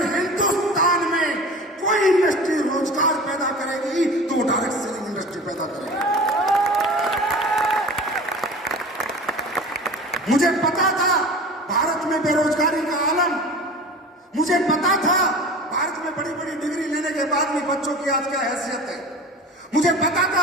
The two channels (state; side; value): normal; both; correlation 0.37